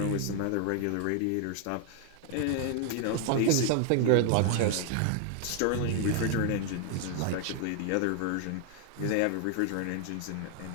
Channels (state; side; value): different; both; correlation 0.00